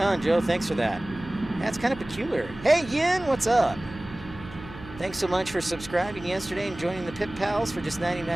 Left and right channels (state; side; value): noise; right; hum, 16 dB below the sound